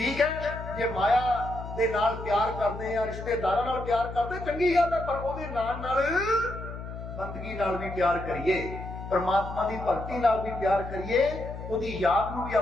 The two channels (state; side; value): noise; left; hum, 9 dB below the sound